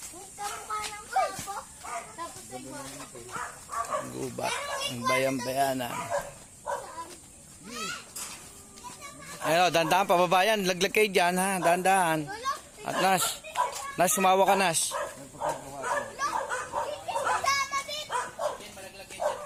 May kamukha ng pabo. Tapos ay Gubat. Ang bayang-bayanan. Ayun, dandahan, pababayan. Laglag kayo dyan, ha? Dandahan. At Nas, sumawa ka, Nas.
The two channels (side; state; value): both; identical; correlation 1.00